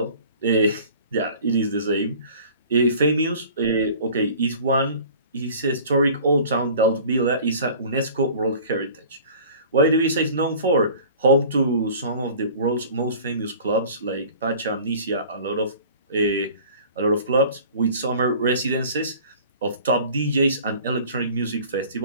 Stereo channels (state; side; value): inverted; both; correlation -0.45